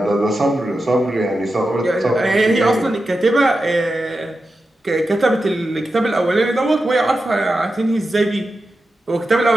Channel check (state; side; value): normal; both; correlation 0.91